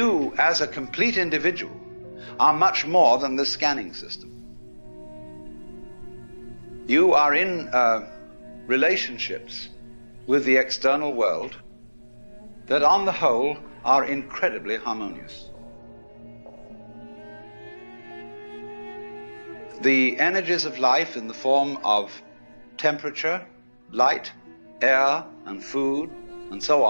as a complete individual are much more than the scanning system. You are in relationships with the external world that on the whole are incredibly harmonious. The energies of life in the form of temperature, light, air, and food, and so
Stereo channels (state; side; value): inverted; both; correlation -1.00